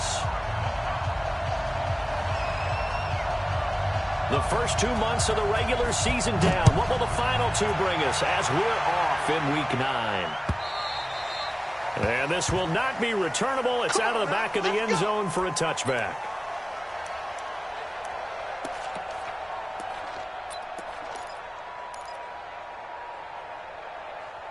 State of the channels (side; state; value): both; identical; correlation 1.00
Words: The first 2 months of the regular season down. What will the final two bring us as we're off in Week 9? And this will not be returnable. It's out of the back of the end zone for a touchback.